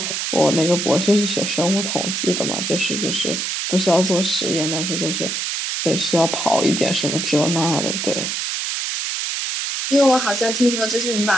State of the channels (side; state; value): right; noise; hiss, 2 dB below the sound